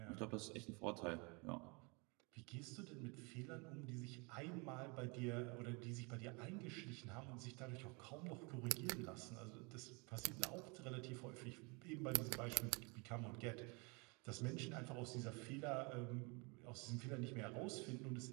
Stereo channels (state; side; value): quieter; left; 30.4 dB